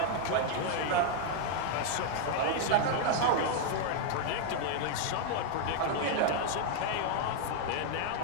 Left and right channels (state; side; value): different; both; correlation 0.00